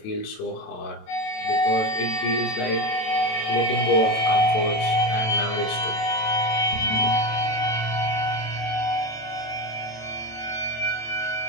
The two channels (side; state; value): right; late; 27 ms